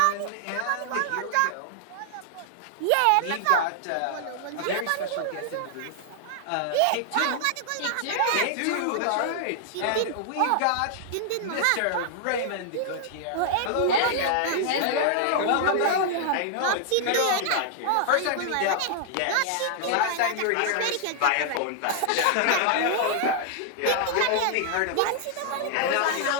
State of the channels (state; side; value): different; both; correlation 0.00